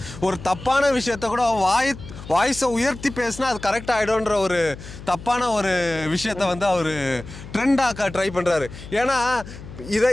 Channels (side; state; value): left; noise; hum, 14 dB below the sound